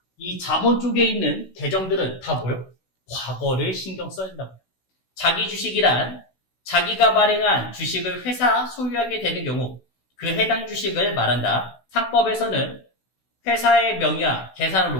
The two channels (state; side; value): late; right; 16 ms